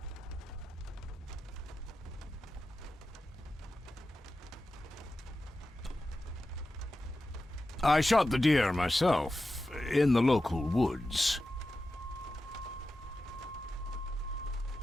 I shot the deer myself, in the local woods.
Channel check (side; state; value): both; normal; correlation 0.92